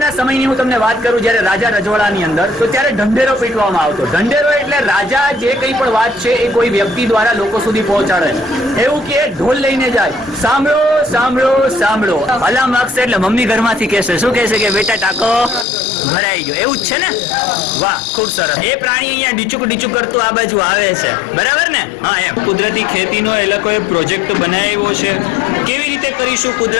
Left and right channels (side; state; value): right; drops out; at 15.7 s